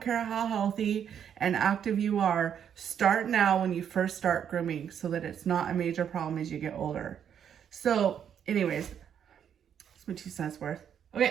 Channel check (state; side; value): quieter; left; 8.6 dB